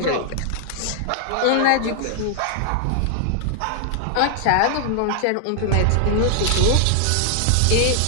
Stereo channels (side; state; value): both; different; correlation 0.00